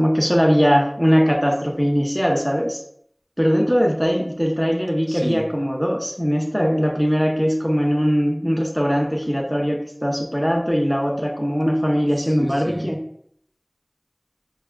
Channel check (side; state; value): both; identical; correlation 1.00